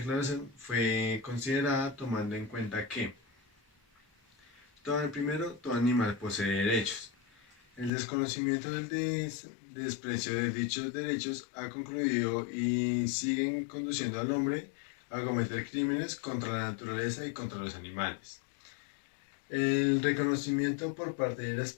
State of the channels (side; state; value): right; drops out; at 7.9 s